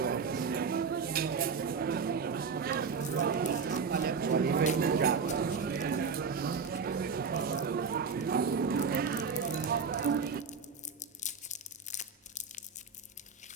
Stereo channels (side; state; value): left; quieter; 5.4 dB